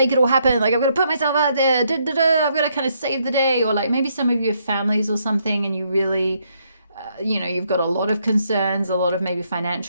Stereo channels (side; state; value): both; inverted; correlation -0.74